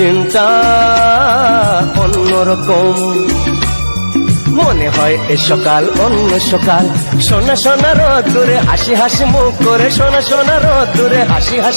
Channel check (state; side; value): inverted; both; correlation -1.00